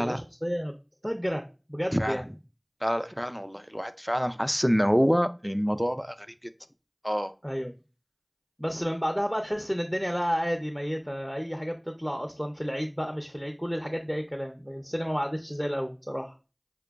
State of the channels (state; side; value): identical; both; correlation 1.00